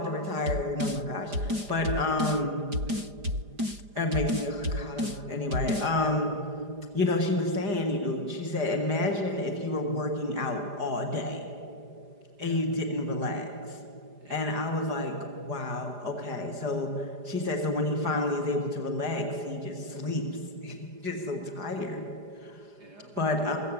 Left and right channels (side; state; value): left; late; 4.9 ms